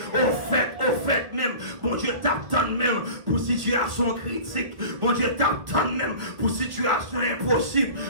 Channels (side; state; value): left; late; 1.4 ms